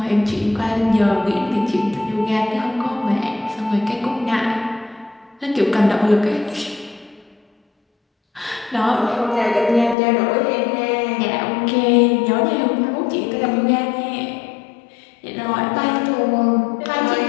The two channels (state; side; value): drops out; right; at 10.0 s